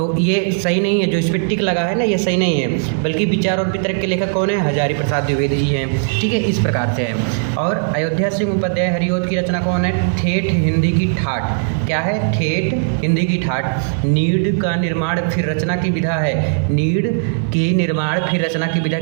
ये सही नहीं है। जो इस पर टिक लगा है ना, ये सही नहीं है, बल्कि विचार और वितर्क के लेखक कौन है, हजारी प्रसाद द्विवेदी जी हैं। ठीक है, इस प्रकार से है। और अयोध्या सिंह उपाध्याय हरिओद की रचना कौन है, ठेठ हिंदी की ठाठ, क्या है, ठेठ हिंदी की ठाठ। नीड का निर्माण फिर रचना की विधा है, नीड की निर्माण फिर रचना की विधा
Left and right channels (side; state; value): left; silent; digital silence